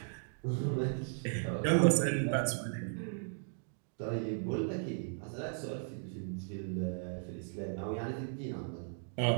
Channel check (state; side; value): silent; left; digital silence